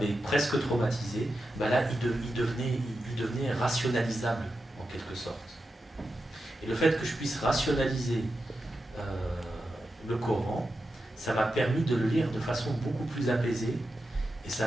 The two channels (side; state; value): both; normal; correlation 0.90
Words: presque traumatisé, ben là, il devenait rationalisable, en quelque sorte. Et le fait que je puisse rationaliser le Coran, ça m'a permis de le lire de façon beaucoup plus apaisée, et